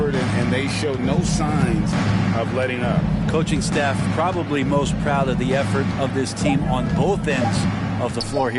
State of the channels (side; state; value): both; identical; correlation 1.00